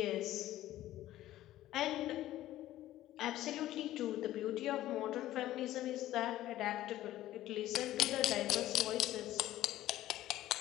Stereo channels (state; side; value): quieter; right; 14.4 dB